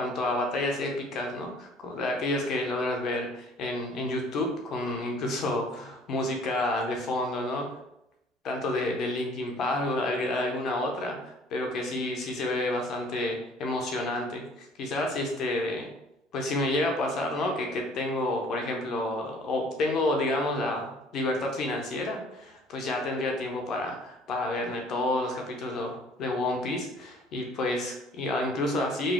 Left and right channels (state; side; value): normal; both; correlation 0.54